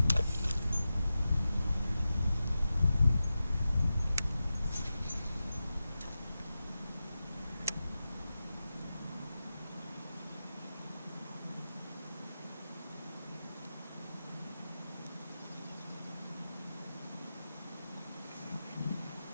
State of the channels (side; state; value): both; inverted; correlation -0.92